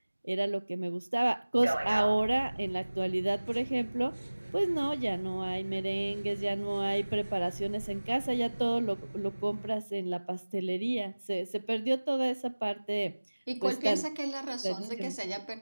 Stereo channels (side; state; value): both; inverted; correlation -1.00